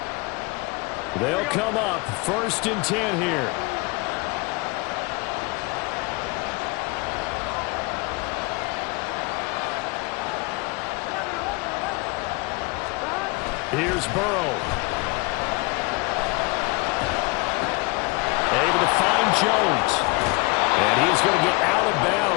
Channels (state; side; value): quieter; right; 26.1 dB